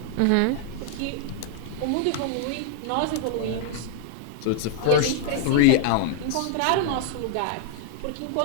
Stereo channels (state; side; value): different; both; correlation -0.01